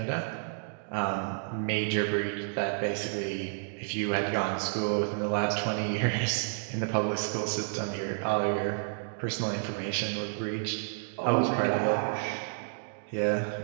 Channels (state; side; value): silent; left; digital silence